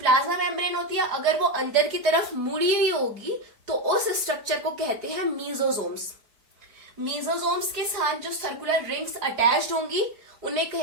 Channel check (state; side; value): late; left; 4.9 ms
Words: मेम्ब्रेन होती है अगर वो अंदर की तरफ मुड़ी हुई होगी तो उस स्ट्रक्चर को कहते हैं मीजोजोम्स। मीजोजोम्स के साथ जो सर्कुलर रिंग्स अटैच्ड होंगी उन्हें